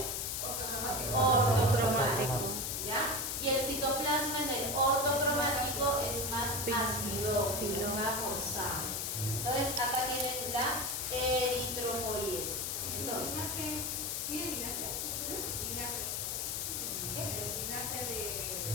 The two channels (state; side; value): noise; left; hiss, 1 dB below the sound